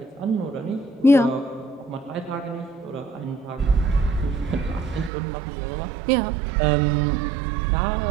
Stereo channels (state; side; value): drops out; left; at 5.1 s